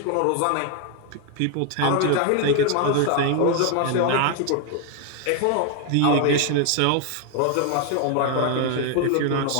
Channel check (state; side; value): different; both; correlation 0.01